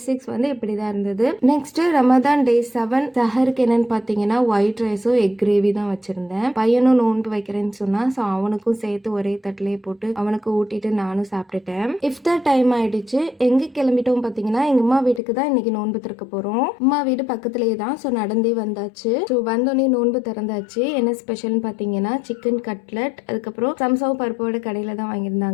6 வந்து இப்படி தான் இருந்தது. நெக்ஸ்ட் ரமதான் டே 7 சஹருக்கு என்னன்னு பார்த்தீங்கன்னா ஒயிட் ரைஸும் எக் கிரேவி தான் வச்சிருந்தேன். பையனும் நோன்பு வைக்கிறேன்னு சொன்னா, ஸோ அவனுக்கும் சேர்த்து ஒரே தட்டிலே போட்டு அவனுக்கு ஊட்டிட்டு நானும் சாப்பிட்டுட்டேன். இஃப்தார் டைம் ஆயிடுச்சு. எங்க கிளம்பிட்டோம் பாத்தீங்கன்னா எங்க அம்மா வீட்டுக்கு தான் இன்னைக்கு நோன்பு திறக்க போறோம். அம்மா வீடு பக்கத்துலயே தான். ஸோ நடந்தே வந்தாச்சு. ஸோ வந்தோடனே நோன்பு திறந்தாச்சு. என்ன ஸ்பெஷல்னு பாத்தீங்கன்னா சிக்கன் கட்லட், அதுக்கப்புறம் சம்சாவும் பருப்போட கடையில தான்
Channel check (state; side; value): drops out; right; at 15.2 s